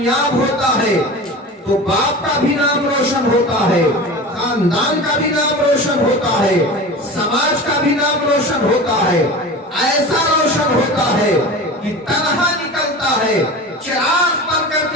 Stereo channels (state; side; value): normal; both; correlation 0.33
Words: होता है तो बाप का भी नाम रोशन होता है, खानदान का भी नाम रोशन होता है, समाज का भी नाम रोशन होता है। ऐसा रोशन होता है कि तनहा निकलता है, चिराग बन